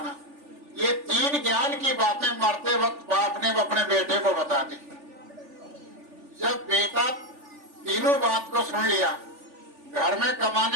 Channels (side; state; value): left; late; 3.4 ms